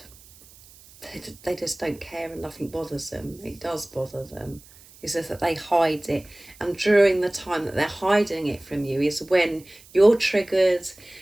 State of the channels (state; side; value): noise; right; hiss, 24 dB below the sound